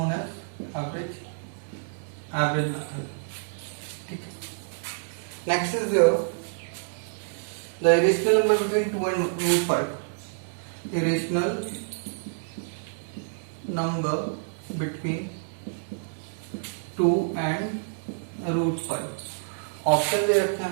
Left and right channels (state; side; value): silent; left; digital silence